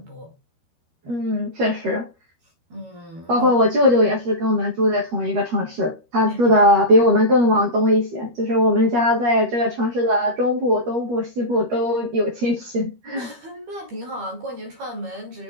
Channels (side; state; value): left; late; 13 ms